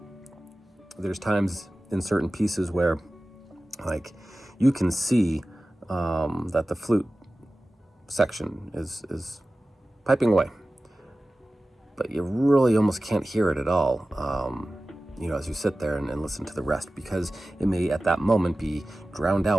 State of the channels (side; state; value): both; normal; correlation 0.96